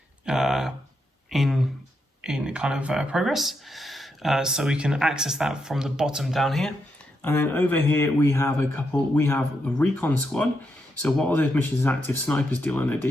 in kind of progress, so we can access that from the bottom down here. And then over here we have we have the recon squad. So while those missions are active, snipers deal an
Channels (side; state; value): both; normal; correlation 0.82